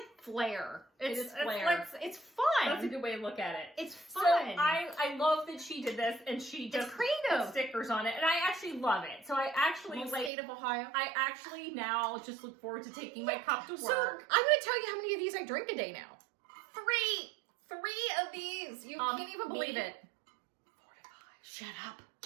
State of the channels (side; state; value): left; drops out; at 10.3 s